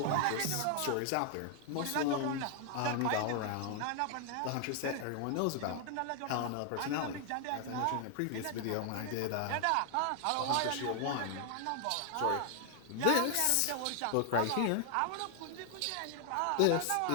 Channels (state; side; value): different; both; correlation 0.00